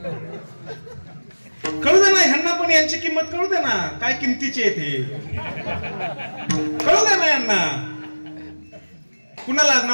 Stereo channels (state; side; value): inverted; both; correlation -1.00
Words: कळू दे ना ह्यांना पण, यांची किंमत कळू दे ना. काय किमतीची आहे ते कळू दे ना यांना. कुणाला?